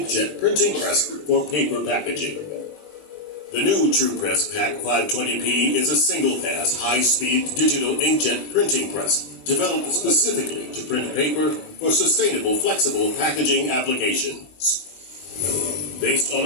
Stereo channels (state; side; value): late; right; 20 ms